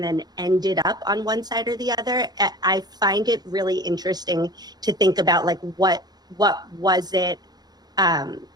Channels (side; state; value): left; late; 0.19 ms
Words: then ended up on one side or the other. I find it really interesting to think about like what was it, and